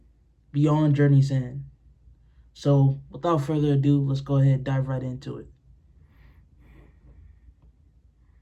Beyond Journey's End. So without further ado, let's go ahead and dive right into it.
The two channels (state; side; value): identical; both; correlation 1.00